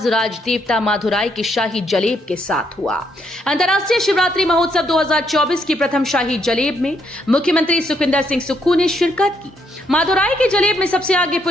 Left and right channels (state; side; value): normal; both; correlation 0.74